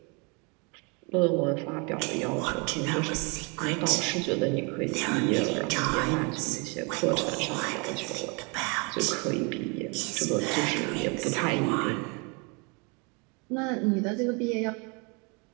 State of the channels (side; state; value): left; quieter; 31.6 dB